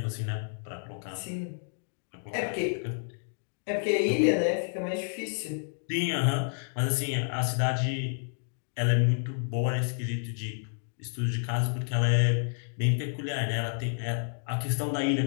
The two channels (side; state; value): right; silent; digital silence